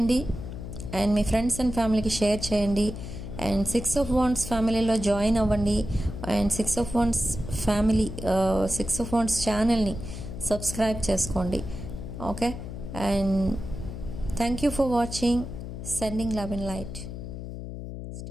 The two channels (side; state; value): left; noise; hum, 8 dB below the sound